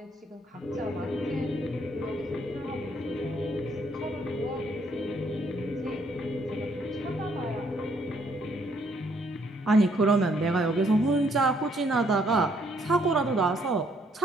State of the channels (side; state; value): both; normal; correlation 0.68